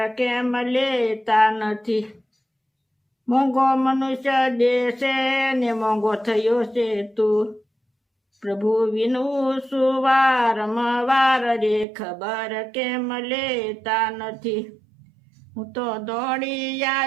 કેમ લેતા નથી. મોંઘો મનુષ્ય દેશે ને મોંઘો થયો છે તું, પ્રભુ વિનું સુવારમવાર રે, ખબર કેમ લેતા નથી. હું તો દોડી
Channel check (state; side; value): drops out; left; at 11.9 s